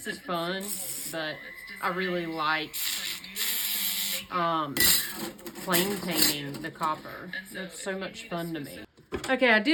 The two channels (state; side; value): identical; both; correlation 1.00